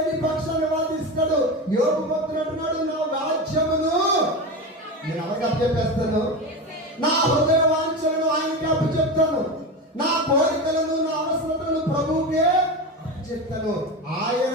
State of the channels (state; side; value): normal; both; correlation 0.22